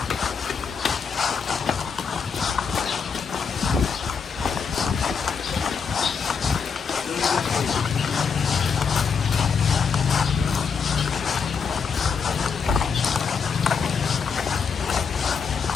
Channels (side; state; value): right; quieter; 6.0 dB